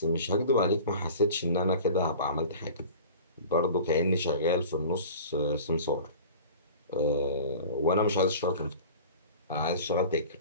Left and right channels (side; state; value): both; inverted; correlation -0.40